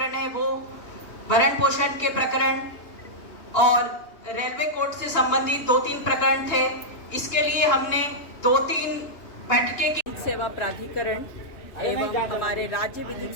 है वो भरण पोषण के प्रकरण और रेलवे कोर्ट से संबंधित 2-3 प्रकरण थे। इसके लिए हमने 2-3 बैठकें की। सेवा प्राधिकरण एवं हमारे राज्य विधिक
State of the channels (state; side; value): late; right; 2.8 ms